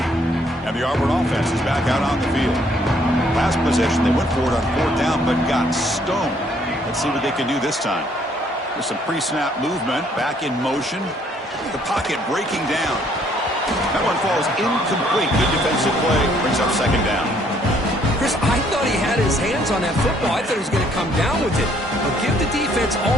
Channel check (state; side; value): normal; both; correlation 0.65